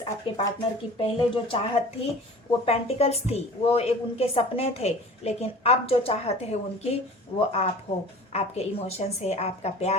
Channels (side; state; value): both; normal; correlation 0.42